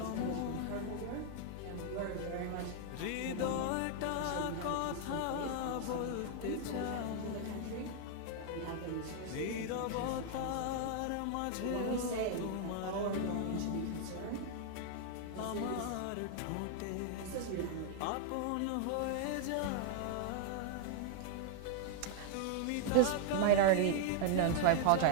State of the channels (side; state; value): both; different; correlation 0.00